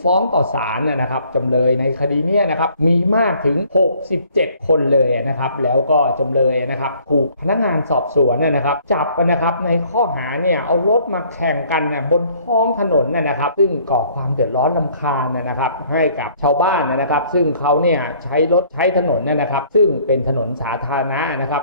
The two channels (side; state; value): both; inverted; correlation -0.59